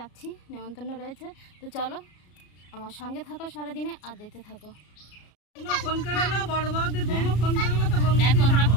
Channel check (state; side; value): late; right; 33 ms